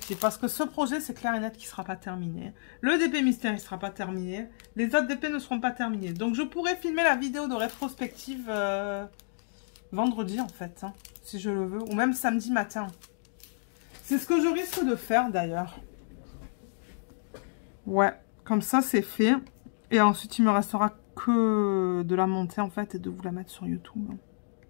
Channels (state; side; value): silent; right; digital silence